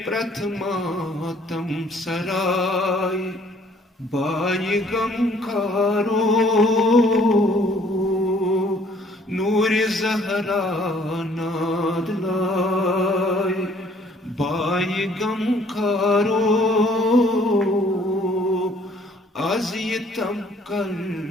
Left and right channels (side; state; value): both; normal; correlation 0.60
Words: پرتھما تم سرائی بائی غم کارو نور زہرا ناد لائی بائی غم کارو آز یہ تم کر